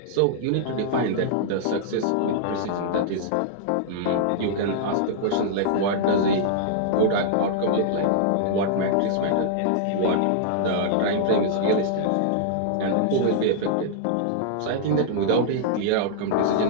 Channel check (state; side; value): different; both; correlation -0.01